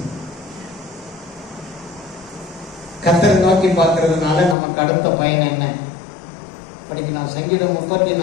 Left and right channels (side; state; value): right; drops out; at 4.5 s